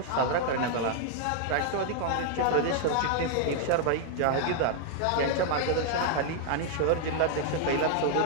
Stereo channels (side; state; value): both; different; correlation 0.00